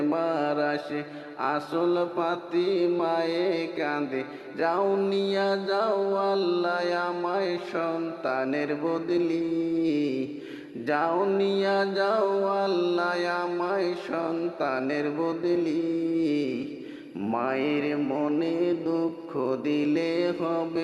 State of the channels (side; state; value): both; identical; correlation 1.00